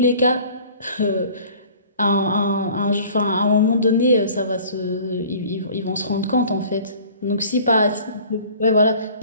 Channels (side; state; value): both; inverted; correlation -0.48